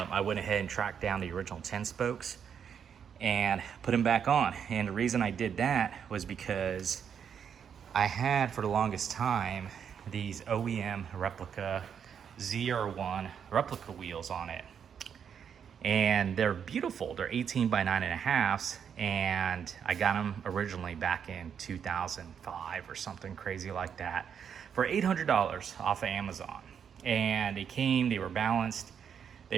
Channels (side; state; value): left; quieter; 7.7 dB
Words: went ahead and tracked down the original 10 spokes and put them back on. And the reason I did that was because I had, for the longest time, these OEM Replica ZR1 replica wheels on it. And they're beautiful. They're 18 by 9.5, and I got them originally back in 2005 or something crazy like that for $800 off of Amazon. And they were balanced,